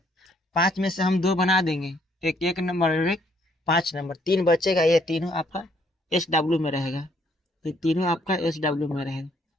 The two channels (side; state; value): both; normal; correlation 0.67